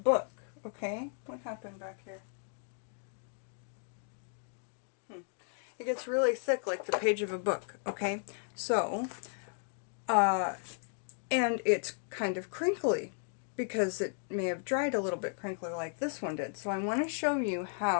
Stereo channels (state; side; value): silent; right; 55 dB below the other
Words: okay? What happened back here? It gets really thick like the page of a book, okay? So, and it's kind of crinkly because it may have dried a little bit crinkly like this one did. So I want to show you